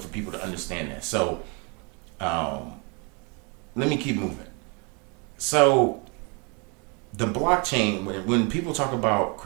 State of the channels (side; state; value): left; quieter; 32.7 dB